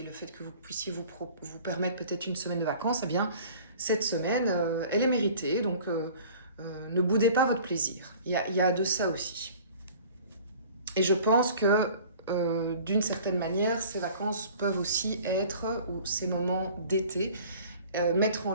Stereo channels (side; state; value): both; inverted; correlation -0.46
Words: le fait que vous puissiez vous permettre peut-être une semaine de vacances, eh bien, cette semaine, elle est méritée. Donc, ne boudez pas votre plaisir. Il y a de ça aussi. Et je pense que d'une certaine manière, ces vacances peuvent aussi être, ou ces moments d'été, mettre en